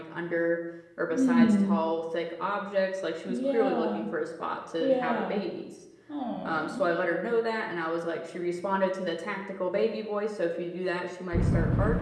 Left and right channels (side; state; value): both; identical; correlation 1.00